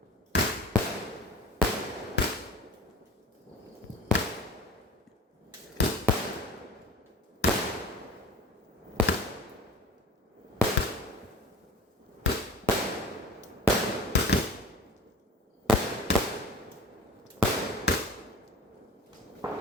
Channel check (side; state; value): both; normal; correlation 0.39